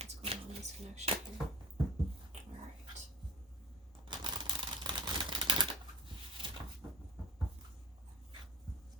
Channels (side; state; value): both; normal; correlation 0.41